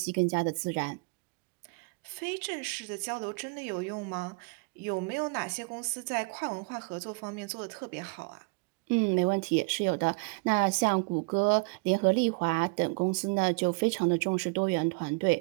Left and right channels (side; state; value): left; quieter; 32.5 dB